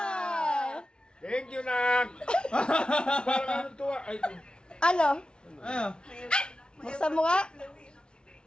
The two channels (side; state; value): right; late; 0.055 ms